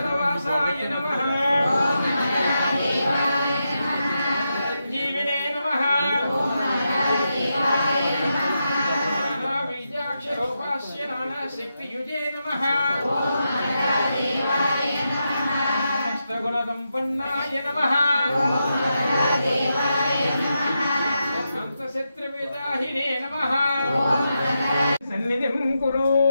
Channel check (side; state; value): both; inverted; correlation -0.86